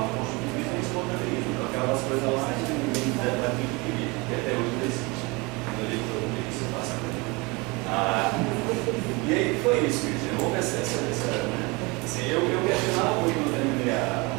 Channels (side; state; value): left; quieter; 26.3 dB